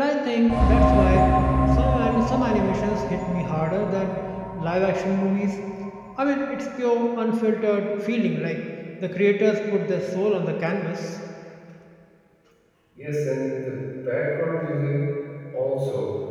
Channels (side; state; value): both; identical; correlation 1.00